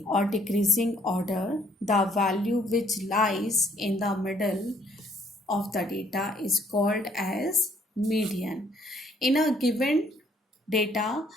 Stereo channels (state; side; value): normal; both; correlation 0.65